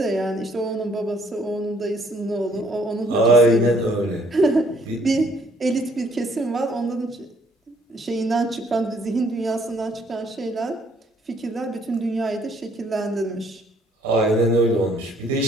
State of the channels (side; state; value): both; normal; correlation 0.64